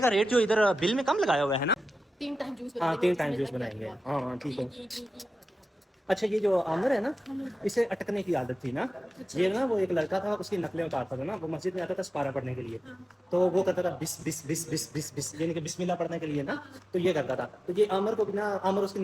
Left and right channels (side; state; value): both; normal; correlation 0.94